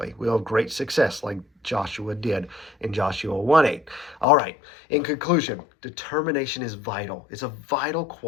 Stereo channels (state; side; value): drops out; right; at 4.2 s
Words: We'll have great success like Joshua did in Joshua 1:8. All right, in conclusion, determination is vital. It's a vital